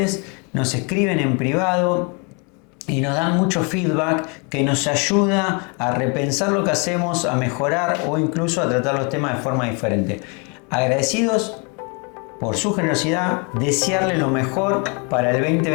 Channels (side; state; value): right; quieter; 33.4 dB